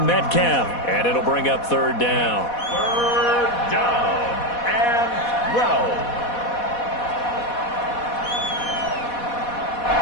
Metcalf, and it'll bring up 3rd down. 3rd down and 12.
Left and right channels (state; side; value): late; right; 4.1 ms